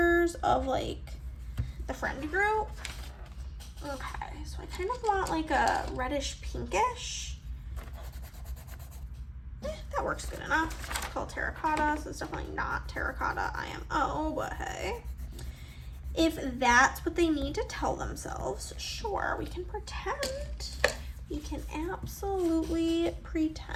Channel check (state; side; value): identical; both; correlation 1.00